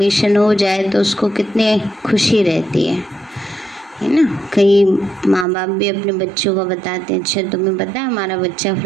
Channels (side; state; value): left; drops out; at 5.5 s